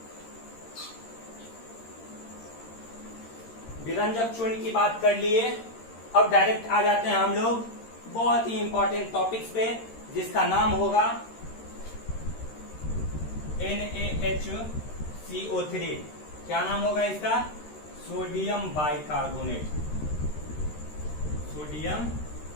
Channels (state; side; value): late; right; 13 ms